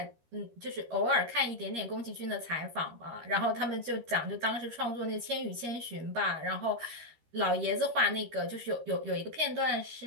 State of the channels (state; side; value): late; left; 13 ms